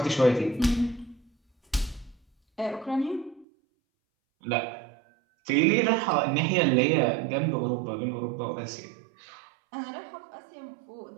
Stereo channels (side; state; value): left; drops out; at 3.5 s